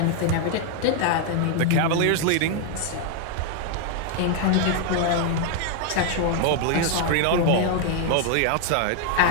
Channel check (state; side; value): different; both; correlation 0.00